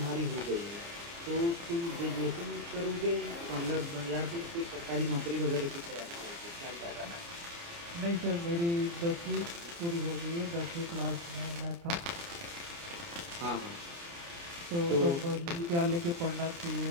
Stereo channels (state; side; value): late; left; 29 ms